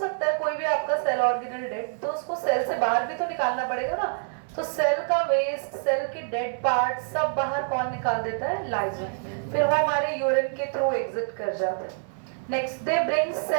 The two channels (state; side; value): silent; left; 61 dB below the other